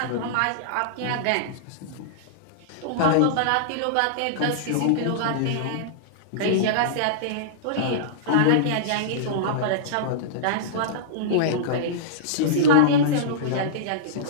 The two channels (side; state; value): both; different; correlation -0.03